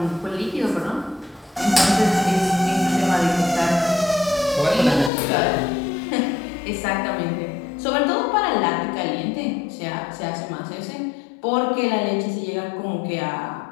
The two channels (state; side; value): drops out; right; at 5.1 s